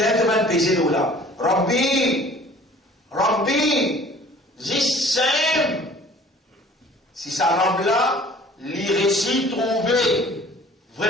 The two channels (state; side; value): normal; both; correlation 0.50